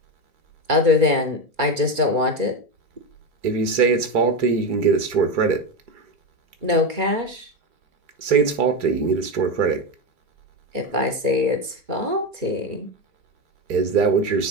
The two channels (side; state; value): left; late; 2.3 ms